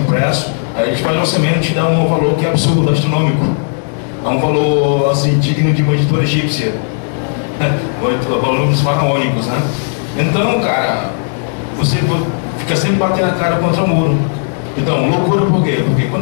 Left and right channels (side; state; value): right; silent; digital silence